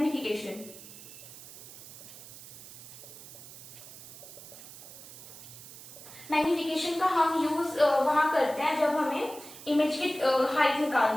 Magnification का हम यूज वहां करते हैं जब हमें इमेज की हाइट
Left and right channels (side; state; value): right; noise; hiss, 16 dB below the sound